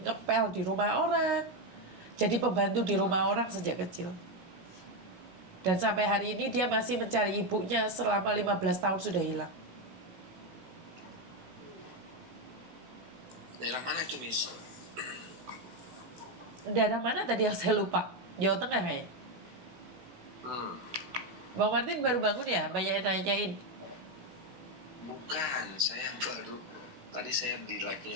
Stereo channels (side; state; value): left; late; 16 ms